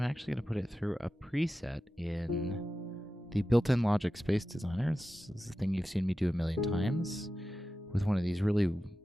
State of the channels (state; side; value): normal; both; correlation 0.93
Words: actually going to put it through a preset in the built-in Logic Space Designer. This is the thing you've seen me do a million times, with one of these really